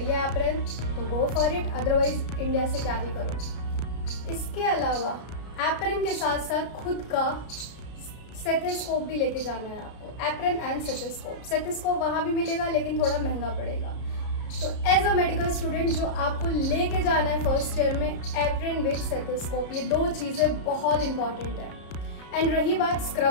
एप्रन तो go for it, otherwise India से कैरी करो। इसके अलावा एप्रन के साथ साथ खुद का स्टेथोस्कोप भी लेके जाना है आपको, एप्रन एंड स्टेथोस्कोप। स्टेथोस्कोप वहाँ भी मिलेगा लेकिन थोड़ा महंगा पड़ेगा। तो एज अ मेडिकल स्टूडेंट जो आपको लेके जाना है फर्स्ट ईयर में, एप्रन विद स्टेथोस्कोप, ये 2 चीज़ें बहुत इंपॉर्टेंट है। एंड रही बात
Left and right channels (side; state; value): right; late; 33 ms